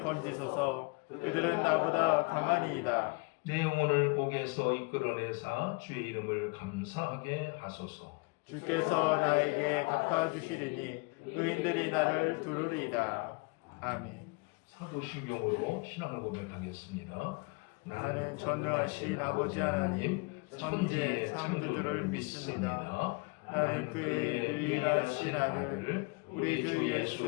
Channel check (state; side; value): quieter; right; 29.8 dB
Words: 건지소서. 그들은 나보다 강하니이다. 내 영혼을 옥에서 이끌어내사 주의 이름을 감사하게 하소서. 주께서 나에게 갚아주시리니 의인들이 나를 두루리이다. 아멘. 사도신경으로 신앙을 고백하겠습니다. 나는 전능하신 아버지 하나님 천지의 창조주를 믿습니다. 나는 그의 유일하신 아들 우리 주 예수